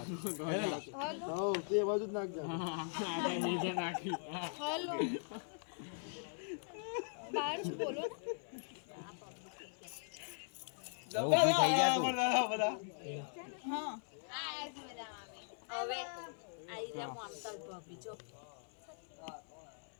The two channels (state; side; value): silent; right; 51 dB below the other